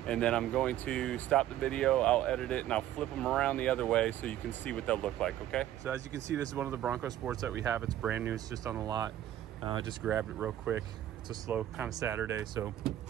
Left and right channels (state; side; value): quieter; left; 12.5 dB